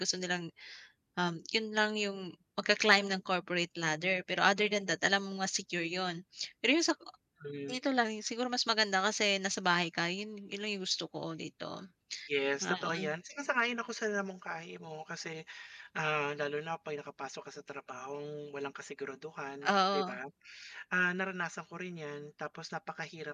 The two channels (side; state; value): both; identical; correlation 1.00